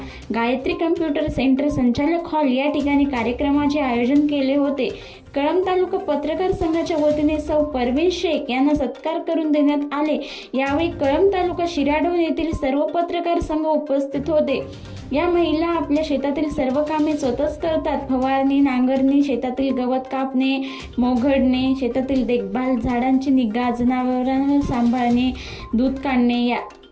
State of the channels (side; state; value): both; identical; correlation 1.00